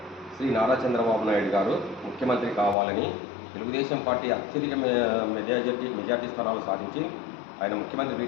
శ్రీ నారా చంద్రబాబు నాయుడు గారు ముఖ్యమంత్రి కావాలని, తెలుగుదేశం పార్టీ అత్యధిక మెజార్టీ స్థానాలు సాధించి ఆయన ముఖ్యమంత్రి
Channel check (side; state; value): right; drops out; at 2.8 s